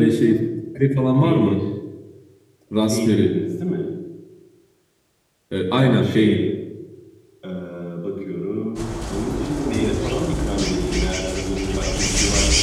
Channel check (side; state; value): both; identical; correlation 1.00